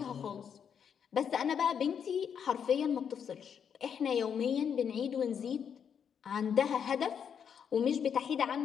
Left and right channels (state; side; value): quieter; right; 7.7 dB